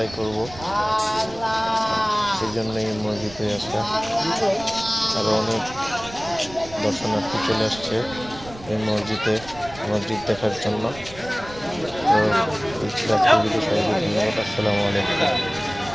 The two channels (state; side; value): noise; right; rumble, 17 dB below the sound